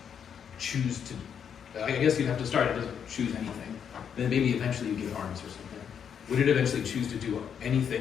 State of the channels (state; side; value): quieter; right; 7.8 dB